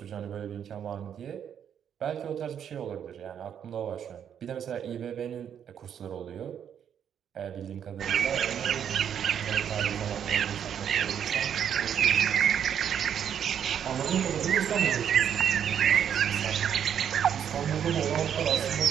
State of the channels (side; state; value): left; quieter; 8.7 dB